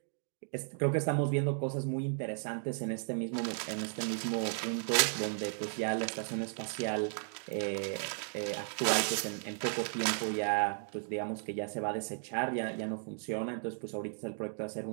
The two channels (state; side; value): silent; left; digital silence